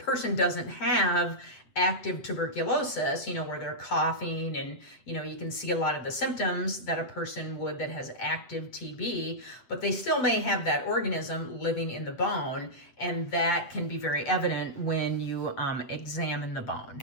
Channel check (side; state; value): right; late; 7.7 ms